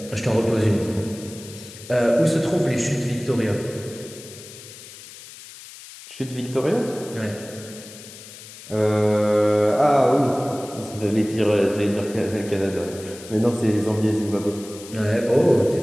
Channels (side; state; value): left; noise; hiss, 17 dB below the sound